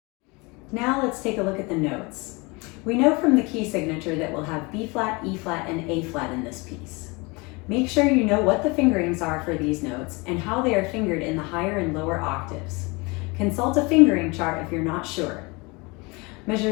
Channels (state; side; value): quieter; right; 27.0 dB